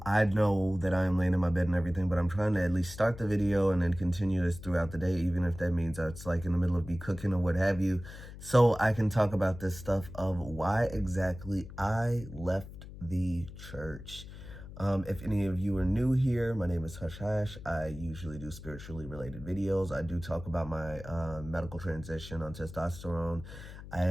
know that I am laying in my bed and everything, but I'm trying to at least start the video and then continue this throughout the day, even if that means it's like in the middle of me cooking or what have you, so I can talk about this stuff of why exactly I left the church. If any of you are new here, my name is Hush Hash. I usually do spiritually related videos. I do talk about my medical transition on testosterone,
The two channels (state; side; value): noise; left; hum, 14 dB below the sound